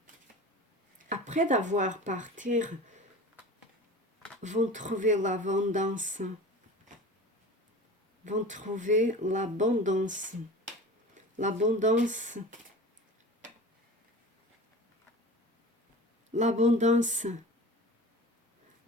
après d'avoir parti, vont trouver l'abondance. Vont trouver l'abondance. L'abondance. L'abondance.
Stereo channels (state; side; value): normal; both; correlation 0.36